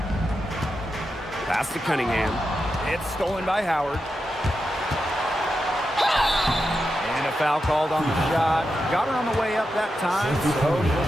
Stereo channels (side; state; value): both; normal; correlation 0.88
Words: Pass to Cunningham. It's stolen by Howard. And a foul called on the shot. Got her on the way up that time, so she'll